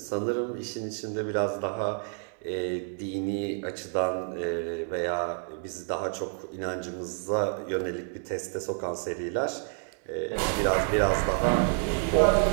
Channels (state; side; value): silent; left; 59 dB below the other